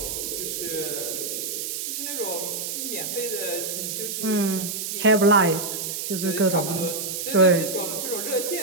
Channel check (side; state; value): right; noise; hiss, 4 dB below the sound